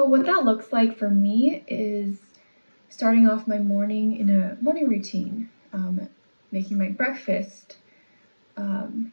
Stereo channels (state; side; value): inverted; both; correlation -1.00